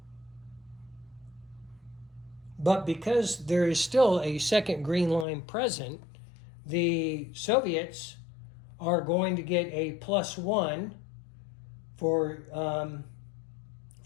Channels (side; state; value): right; drops out; at 5.2 s